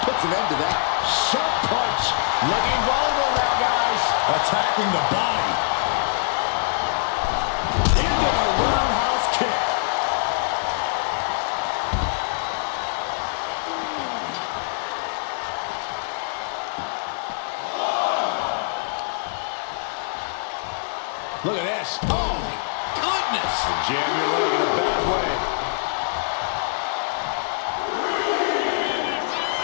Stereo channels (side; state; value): right; silent; digital silence